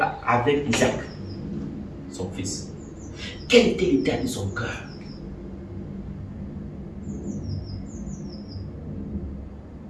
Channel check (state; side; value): identical; both; correlation 1.00